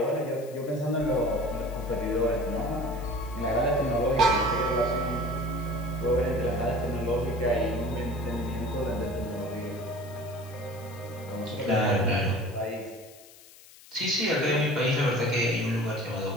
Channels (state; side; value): noise; left; hiss, 22 dB below the sound